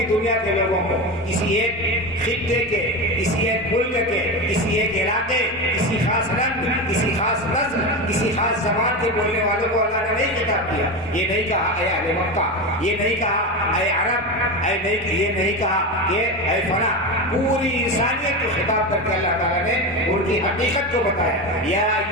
دنیا کے لوگوں کو، کسی ایک خطے کے، کسی ایک ملک کے، کسی ایک علاقے، کسی خاص رنگ، کسی خاص نسل، کسی خاص زبان کے بولنے والوں کو اللہ نے نہیں خطاب کیا۔ یہ نہیں کہا اے اہل مکہ، یہ نہیں کہا اے عرب، یہ نہیں کہا کہ اے فلاں، پوری انسانیت کو خطاب کر کے اللہ تعالیٰ نے ان کی حقیقت کو بتایا۔ یا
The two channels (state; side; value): normal; both; correlation 0.20